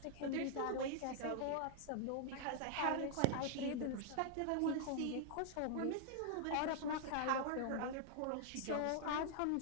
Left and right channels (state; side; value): different; both; correlation -0.01